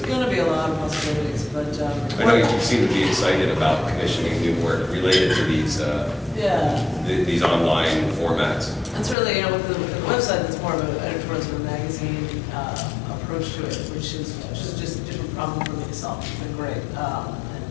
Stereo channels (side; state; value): right; drops out; at 9.2 s